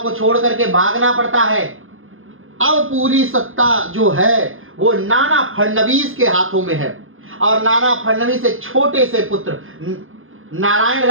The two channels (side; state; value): left; late; 0.60 ms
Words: को छोड़ करके भागना पड़ता है। अब पूरी सत्ता जो है वो नाना फडणवीस के हाथों में है। और नाना फडणवीस एक छोटे से पुत्र नारायण